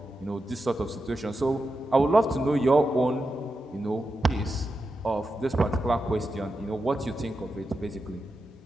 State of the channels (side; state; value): both; normal; correlation 0.89